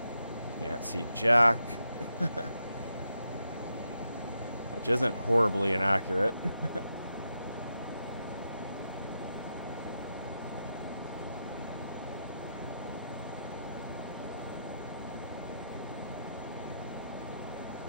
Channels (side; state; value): both; inverted; correlation -0.83